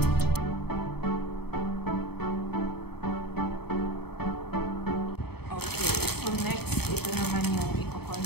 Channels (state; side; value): late; right; 0.97 ms